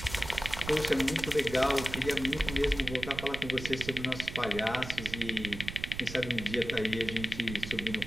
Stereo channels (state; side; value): noise; right; rumble, 10 dB below the sound